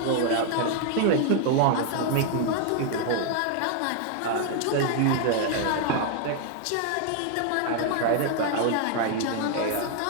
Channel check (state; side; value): different; both; correlation 0.00